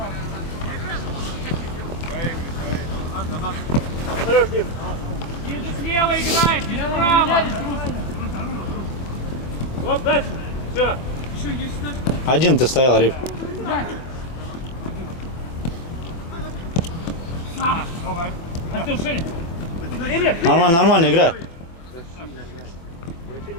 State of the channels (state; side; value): late; right; 24 ms